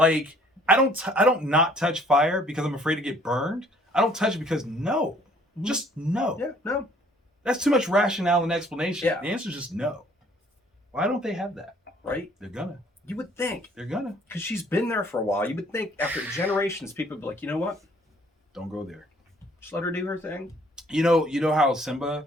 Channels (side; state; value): both; normal; correlation 0.59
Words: I don't not touch fire because I'm afraid to get burned. I don't touch it because no. Just no. Yeah, no. That's too much rationale and explanation. Yeah. The answer is just no. Why don't they have that? Right? They're gonna. You would think. They're gonna. Because she's been there for a while. You would think after generations, people would be like, you know what? Don't go there. Just let her do her thing. You know how Simba